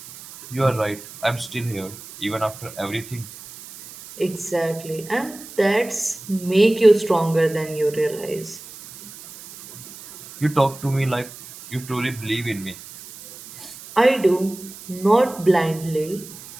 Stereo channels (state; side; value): noise; right; hiss, 16 dB below the sound